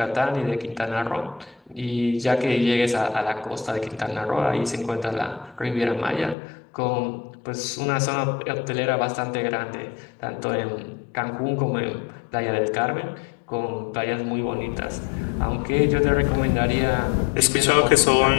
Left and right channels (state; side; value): drops out; right; at 6.4 s